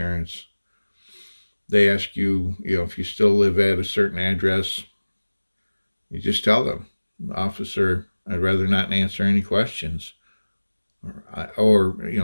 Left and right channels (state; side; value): inverted; both; correlation -1.00